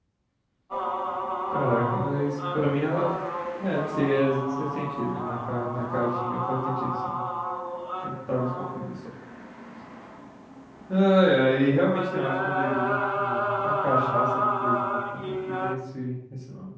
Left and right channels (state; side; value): identical; both; correlation 1.00